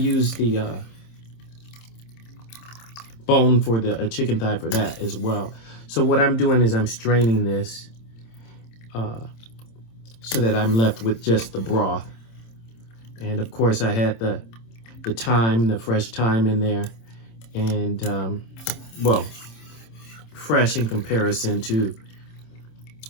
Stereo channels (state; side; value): late; right; 26 ms